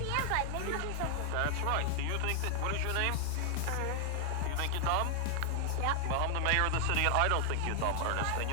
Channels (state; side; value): different; both; correlation 0.00